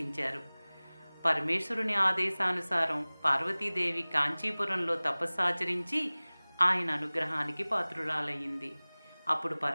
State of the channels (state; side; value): inverted; both; correlation -1.00